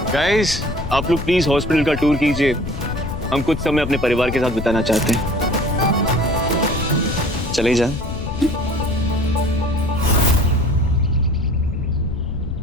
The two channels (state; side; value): noise; left; rumble, 6 dB below the sound